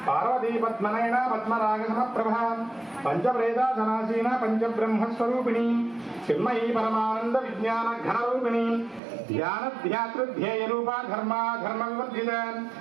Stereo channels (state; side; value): drops out; left; at 9.0 s